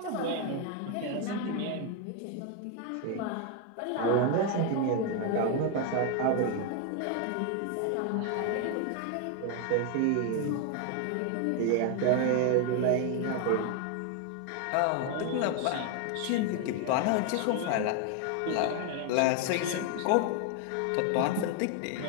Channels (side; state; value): both; different; correlation 0.01